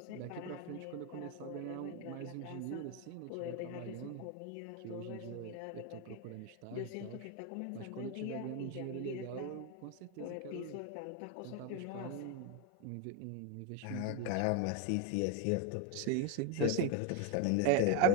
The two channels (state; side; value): different; both; correlation 0.02